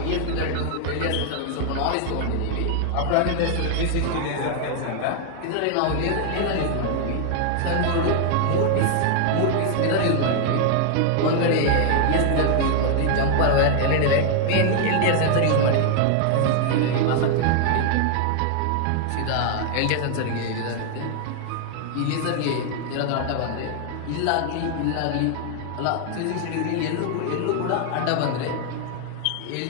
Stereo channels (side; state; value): both; different; correlation 0.00